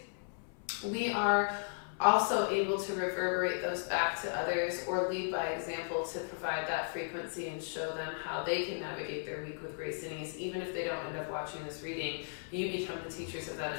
we are also able to reverberate those back to others or lead by example to provide that frequency and show them how they can navigate their week with grace and ease. Even if they don't end up watching this reading, you become the teachers of that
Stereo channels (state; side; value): silent; right; 54 dB below the other